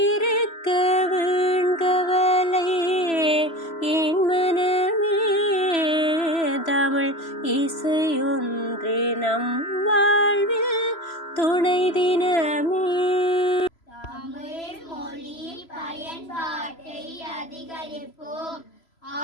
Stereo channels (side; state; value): right; late; 3.0 ms